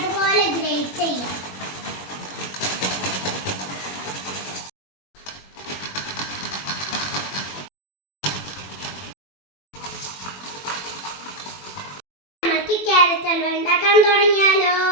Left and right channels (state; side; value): late; right; 21 ms